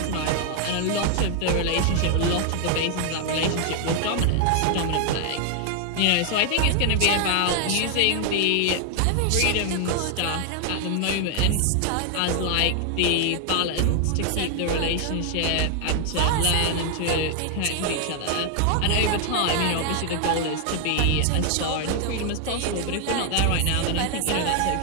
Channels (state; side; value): different; both; correlation 0.00